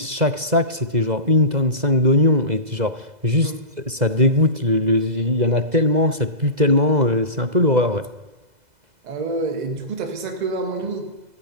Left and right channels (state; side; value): late; left; 2.0 ms